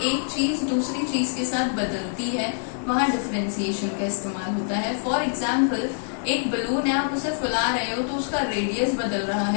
एक चीज दूसरी चीज के साथ बदलती है, वहां डिफरेंशिएशन का इस्तेमाल होता है. फॉर एग्जाम्पल, एक बलून है, आप उसे फुला रहे हो तो उसका रेडियस बदल रहा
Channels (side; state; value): right; silent; digital silence